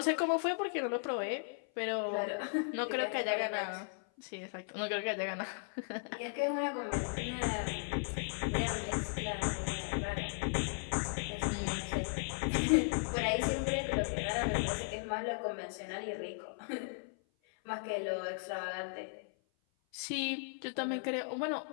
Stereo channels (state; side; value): silent; right; 53 dB below the other